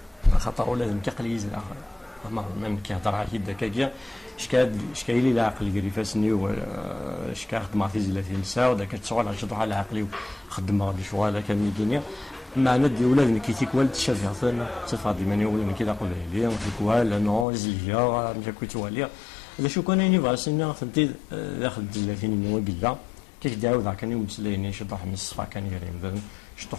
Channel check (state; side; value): drops out; right; at 17.4 s